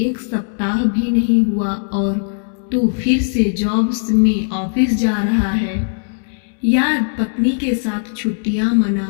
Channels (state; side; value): silent; right; 66 dB below the other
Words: सप्ताह भी नहीं हुआ और तू फिर से जॉब में ऑफिस जा रहा है। यार, पत्नी के साथ छुट्टियां